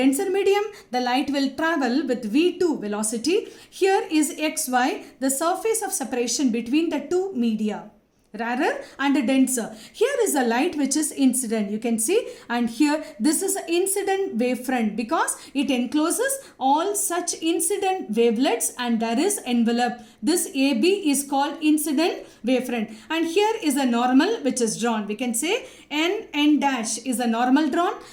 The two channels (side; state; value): both; identical; correlation 1.00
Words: medium, the light will travel with v2 velocity. Here is xy, the surface of separation between the two media, rarer and denser. Here is a light which is incident, you can see, and here this is incident wavefront because it encloses all such incident wavelets and there is envelope. This AB is called incident wavefront, and here is a normal which is drawn. We can say N dash is a normal drawn,